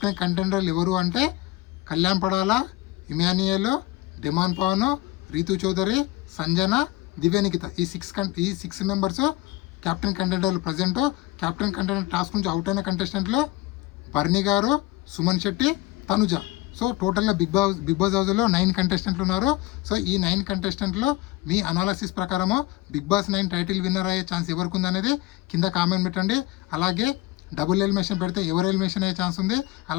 కంటెండర్లు ఎవరు అంటే కళ్యాణ్ పడాల, ఇమాన్యుయల్, డిమాండ్ పవన్, రీతు చౌదరి, సంజన, దివ్యానికిత, ఈ 6 మెంబర్స్ కెప్టెన్ కంటెండర్లు. ప్రజెంట్ కెప్టెన్ కంటెండర్ టాస్క్ నుంచి అవుట్ అయిన కంటెస్టెంట్లు బర్నీ గారు, సుమన్ శెట్టి, తనుజ. సో టోటల్గా బిగ్ బాస్ హౌస్లో 9 కంటెస్టెంట్లు ఉన్నారు. సో ఈ 9 కంటెస్టెంట్లో మీ అనాలసిస్ ప్రకారము బిగ్ బాస్ 9 టైటిల్ విన్నర్ అయ్యే ఛాన్స్ ఎవరికి ఉందనేది కింద కామెంట్ పెట్టండి. అలాగే డబుల్ ఎలిమినేషన్ పెడితే ఎవరు ఎలిమినేషన్ అయ్యే ఛాన్స్ ఉంది,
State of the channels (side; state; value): right; quieter; 18.3 dB